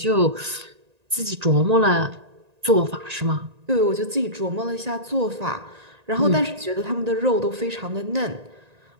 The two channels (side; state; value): left; late; 1.9 ms